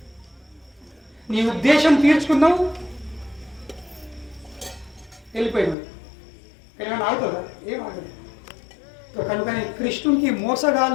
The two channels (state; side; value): drops out; right; at 5.8 s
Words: నీ ఉద్దేశం తీర్చుకున్నావు, వెళ్ళిపోయినావు. కానీ ఏమైనా ఆగుతుందా? ఏం ఆగదు. కనుకని కృష్ణునికి